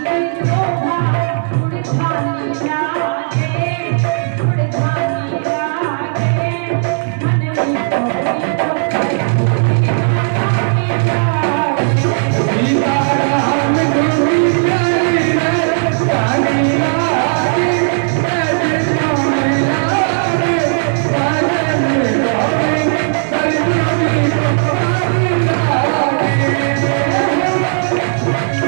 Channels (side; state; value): left; silent; digital silence